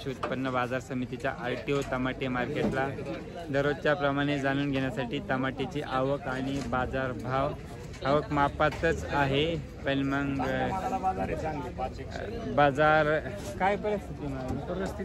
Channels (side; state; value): both; identical; correlation 1.00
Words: उत्पन्न बाजार समितीच्या RTO टमाटे मार्केटला। दररोजच्या प्रमाणे जाणून घेण्यासाठी टमाट्याची आवक आणि बाजार भाव। आवक मापातच आहे पण मग बाजार काय